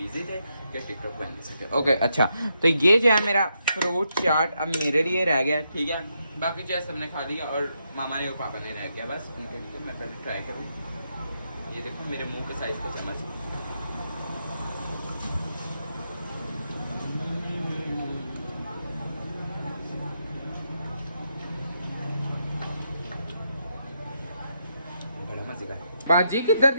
थे कि टिकटॉक बन नहीं सके। ओके, अच्छा, तो ये जो है मेरा फ्रूट चाट अब मेरे लिए रह गया, ठीक है। बाकी जो है सबने खा लिया, और मामा ने और पापा ने रह गया बस उनके लिए। मैं पहले ट्राई करूँ। ये देखो मेरे मुँह के साइज़ का चम्मच। बाजी किधर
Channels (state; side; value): inverted; both; correlation -0.81